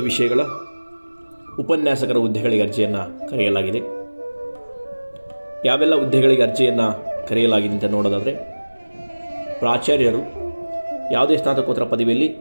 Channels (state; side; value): inverted; both; correlation -1.00